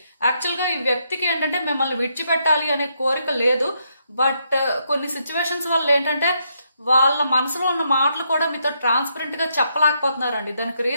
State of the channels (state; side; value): inverted; both; correlation -0.77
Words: యాక్చువల్ గా ఈ వ్యక్తికి ఏంటంటే మిమ్మల్ని విడిచిపెట్టాలి అనే కోరిక లేదు. బట్ కొన్ని సిచ్యువేషన్స్ వల్ల ఏంటంటే వాళ్ళ మనసులో ఉన్న మాటలు కూడా మీతో ట్రాన్స్పరెంట్ గా చెప్పలేకపోతున్నారండి. దానికి